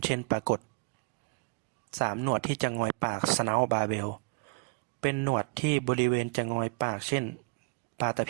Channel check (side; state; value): left; quieter; 32.1 dB